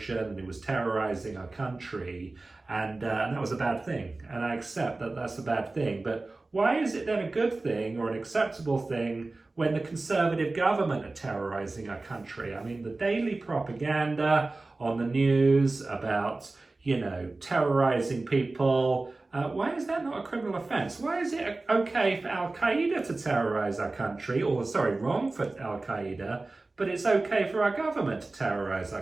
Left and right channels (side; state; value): left; quieter; 3.3 dB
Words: and it was terrorizing our country, and that was a bad thing, and I accept that that's a bad thing. But why is it then a good thing or an acceptable thing when the Conservative government are terrorizing our country? I mean, the daily propaganda on the news about terrorizing people, why is that not a criminal offence? Why is it okay for Al-Qaeda to terrorise our country, or wrong for Al-Qaeda, but it's okay for our government to terrorise our